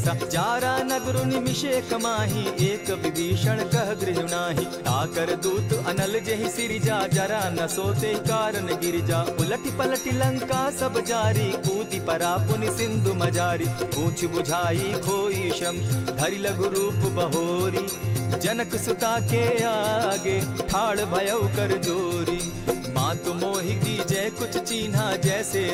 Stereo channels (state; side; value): identical; both; correlation 1.00